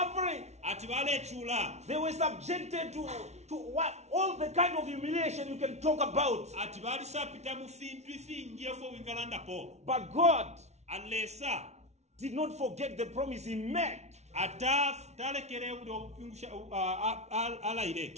They were subjected to what all the kind of humiliation you can talk about. But God did not forget the promise he made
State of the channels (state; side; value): late; left; 0.32 ms